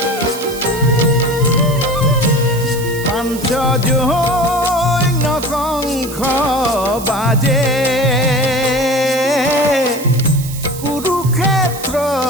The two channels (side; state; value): right; noise; hiss, 13 dB below the sound